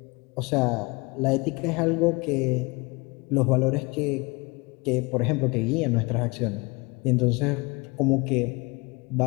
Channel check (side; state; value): right; quieter; 26.7 dB